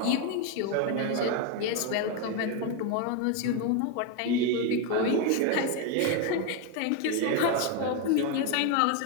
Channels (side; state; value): both; different; correlation 0.02